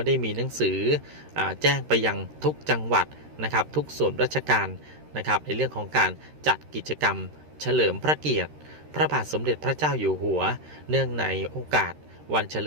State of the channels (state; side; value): late; left; 13 ms